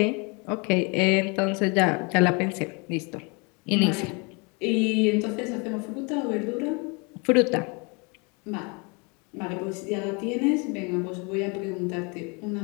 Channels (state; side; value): quieter; right; 31.1 dB